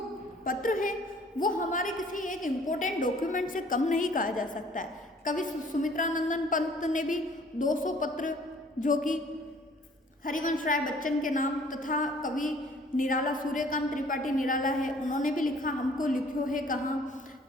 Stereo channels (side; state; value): both; normal; correlation 0.55